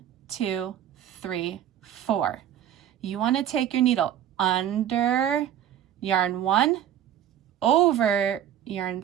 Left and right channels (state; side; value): quieter; left; 10.6 dB